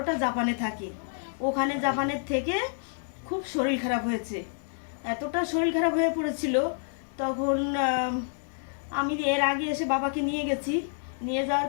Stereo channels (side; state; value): right; silent; 58 dB below the other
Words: জাপানে থাকে। ওখানে জাপানের থেকে খুব শরীর খারাপ হয়েছে, এতটা শরীর খারাপ হয়ে পড়েছিল তখন আমি এর আগে এসে বাবাকে নিয়ে গেছি, নিয়ে যাওয়ার